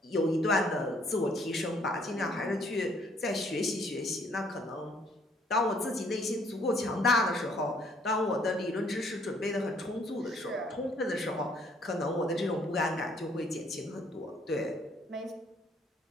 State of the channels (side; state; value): both; normal; correlation 0.63